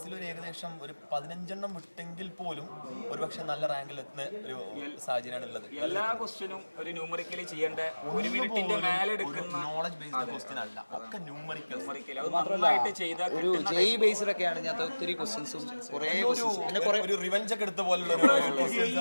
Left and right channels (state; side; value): inverted; both; correlation -1.00